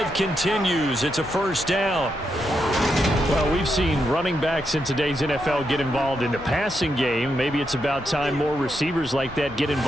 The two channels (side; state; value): both; normal; correlation 0.83